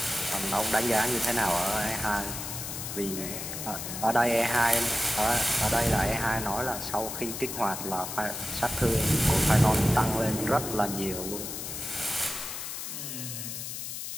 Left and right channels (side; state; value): left; noise; hiss, 6 dB below the sound